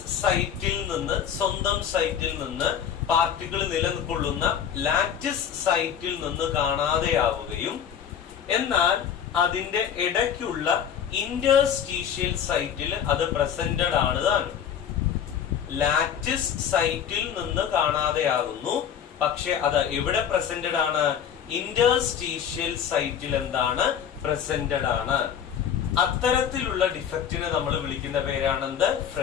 സൈറ്റിൽ നിന്ന്, സ്വന്തം സൈറ്റിൽ നിന്ന്, പാർട്ടിക്കിൾ നിലനിൽക്കൊള്ളുന്ന ലാറ്റിസ് സൈറ്റിൽ നിന്ന് കാണാതെയാവുകയും എന്നാൽ അതിന്റെ ഇടയ്ക്കുള്ള ഇന്റർസ്റ്റീഷ്യൽ സൈറ്റിൽ അത് പ്രസന്റഡ് ആണ് താനും. ലാറ്റിസ് സൈറ്റിൽ നിന്ന് കാണാതെയാകുന്നു, പക്ഷെ അത് എവിടെ പ്രസന്റഡ് ആണ്? ഇന്റർസ്റ്റീഷ്യൽ സൈറ്റിൽ എന്താണ്? പ്രസന്റഡ് ആണ്. അത്തരത്തിലുള്ള ഡിഫക്റ്റിനെ നമ്മൾ വിളിക്കുന്ന പേരാണെന്ത്?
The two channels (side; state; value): right; quieter; 8.5 dB